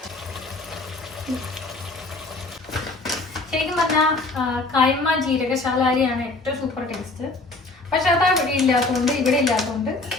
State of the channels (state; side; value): quieter; right; 3.2 dB